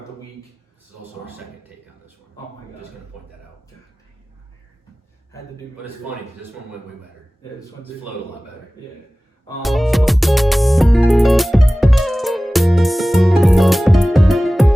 the week. This is also our second take on this one. Oh my God. I'm just going to point that out. Had to do. But it's funny because this one went way better. Yeah, this one's flowed a lot better. Yeah.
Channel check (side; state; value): both; normal; correlation 0.97